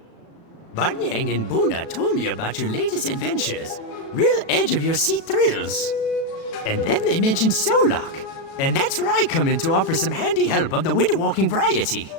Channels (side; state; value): right; late; 36 ms